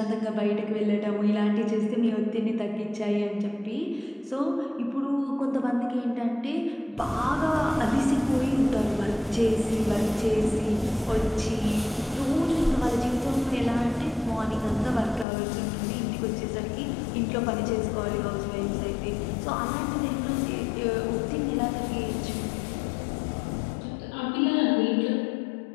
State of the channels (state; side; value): drops out; right; at 15.2 s